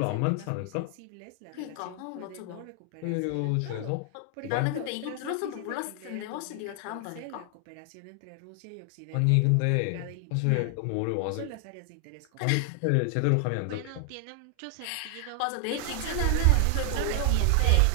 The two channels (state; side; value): different; both; correlation 0.00